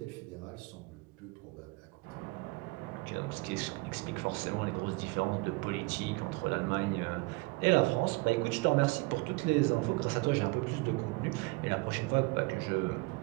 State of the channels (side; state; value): left; quieter; 25.9 dB